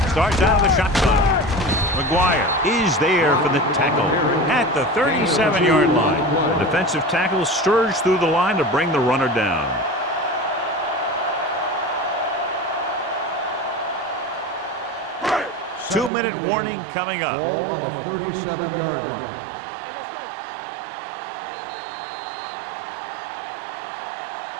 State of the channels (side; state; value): left; drops out; at 16.1 s